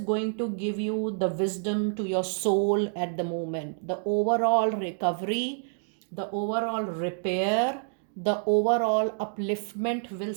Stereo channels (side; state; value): left; silent; digital silence